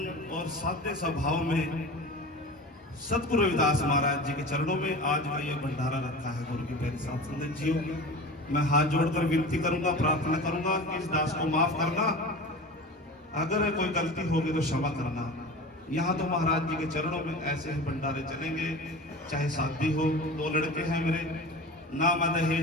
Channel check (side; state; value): both; normal; correlation 0.34